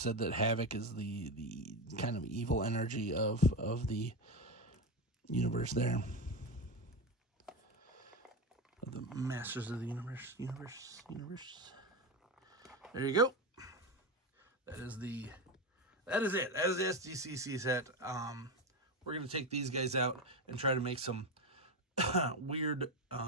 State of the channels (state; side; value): normal; both; correlation 0.16